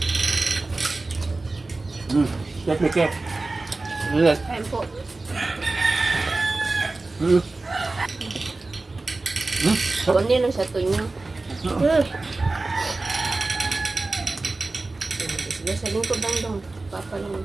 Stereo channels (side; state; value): left; quieter; 3.3 dB